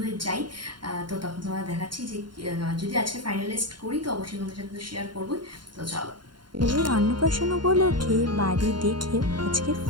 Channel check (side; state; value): left; late; 0.72 ms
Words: হয়ে যাই। তো তখন তোমার দেখাচ্ছি যে যদি আজকে ফাইনালাইজড করি তো অবশ্যই তোমাদের সাথে তো শেয়ার করবোই। তো চলো, ছেলের অন্নপ্রাশন উপলক্ষে বাড়ি দেখে আজকে